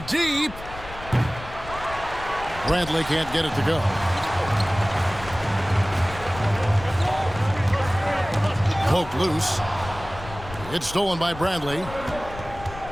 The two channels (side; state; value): left; noise; rumble, 14 dB below the sound